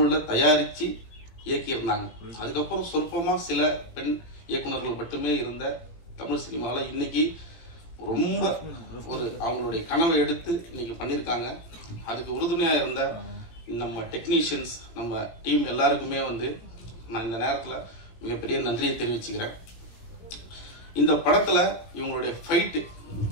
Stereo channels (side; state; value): right; late; 18 ms